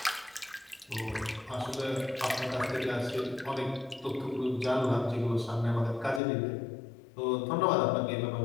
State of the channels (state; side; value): drops out; right; at 6.2 s